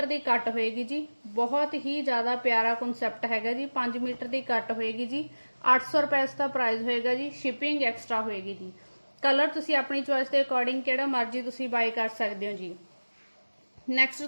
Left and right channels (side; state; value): both; inverted; correlation -1.00